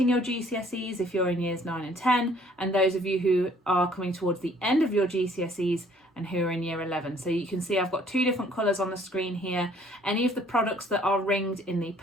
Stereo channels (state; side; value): normal; both; correlation 0.59